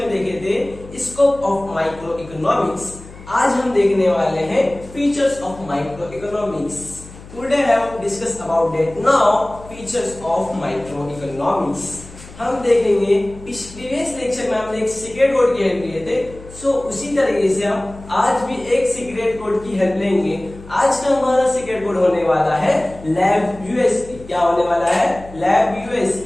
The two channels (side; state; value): left; noise; hum, 18 dB below the sound